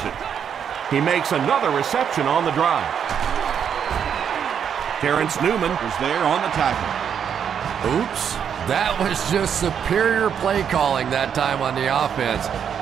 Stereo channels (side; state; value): left; quieter; 8.0 dB